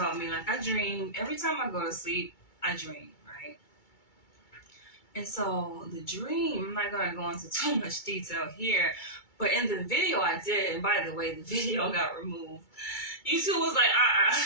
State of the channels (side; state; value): right; late; 2.3 ms